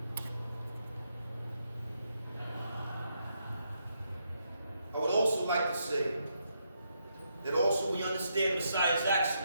like to say that also we understand Messiah's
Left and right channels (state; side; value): inverted; both; correlation -0.79